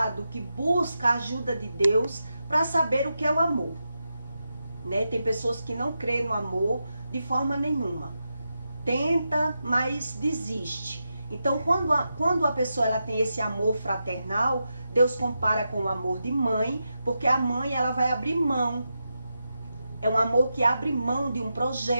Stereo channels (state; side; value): inverted; both; correlation -0.88